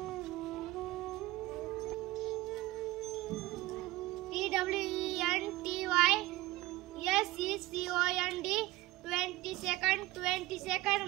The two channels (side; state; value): left; quieter; 18.7 dB